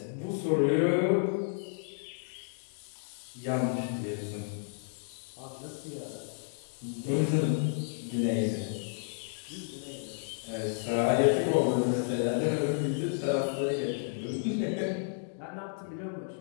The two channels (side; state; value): right; silent; digital silence